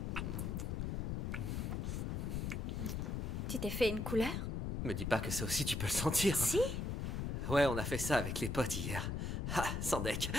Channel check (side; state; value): left; noise; rumble, 1 dB below the sound